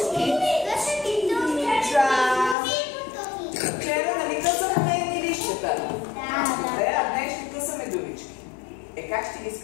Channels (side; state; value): right; drops out; at 2.6 s